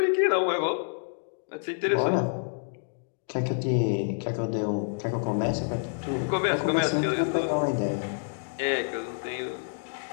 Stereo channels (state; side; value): silent; right; digital silence